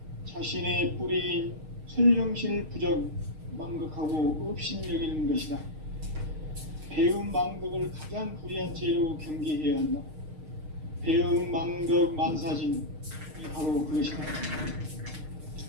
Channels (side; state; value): left; late; 6.5 ms